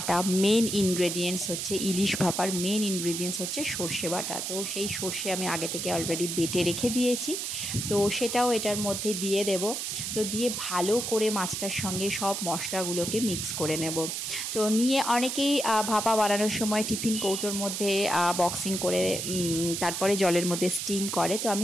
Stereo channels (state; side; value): noise; right; hiss, 3 dB below the sound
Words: মেন ইনগ্রেডিয়েন্টস হচ্ছে ইলিশ ভাপার মেন ইনগ্রেডিয়েন্টস হচ্ছে সর্ষে বাটা। তো সেই সর্ষে আমি আগে থেকে অলরেডি বেটে রেখে দিয়েছি, তো সেটাও এটার মধ্যে দিয়ে দেব। তো দিয়ে ভালো করে মাছটার সঙ্গে সব মশলাগুলোকে মিক্স করে নেব। তো নিয়ে অনেকেই ভাপা বানানোর সময় টিফিন কৌটোর মধ্যে বক্সিং করে তারপরে জলের মধ্যে স্টিম করে। তো